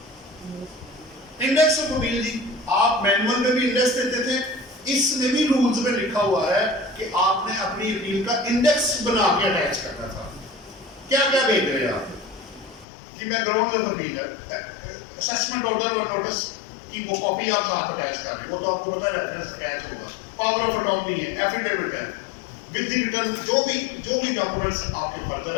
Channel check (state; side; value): drops out; right; at 12.9 s